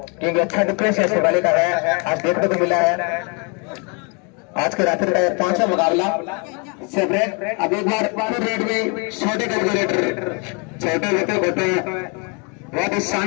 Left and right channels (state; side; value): quieter; right; 33.9 dB